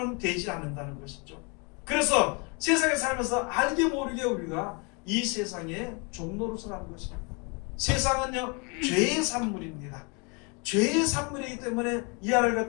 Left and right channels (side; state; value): right; quieter; 32.4 dB